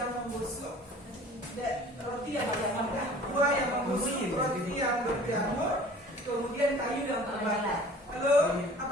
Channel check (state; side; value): normal; both; correlation 0.47